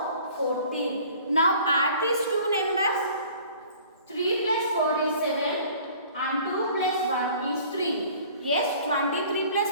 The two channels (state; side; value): inverted; both; correlation -0.50